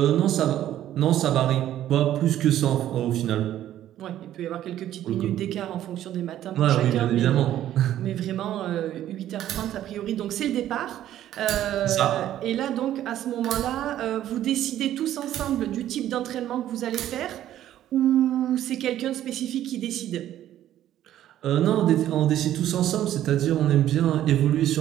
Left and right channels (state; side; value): quieter; left; 12.2 dB